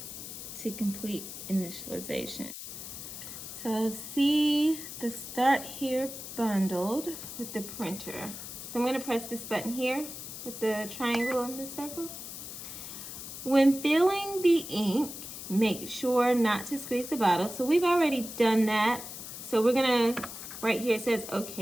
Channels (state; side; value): noise; left; hiss, 10 dB below the sound